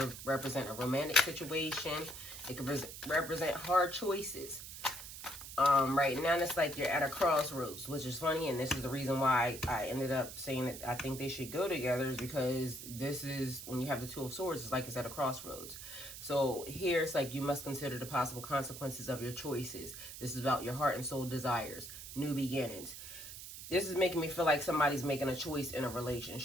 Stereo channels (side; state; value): right; noise; hiss, 11 dB below the sound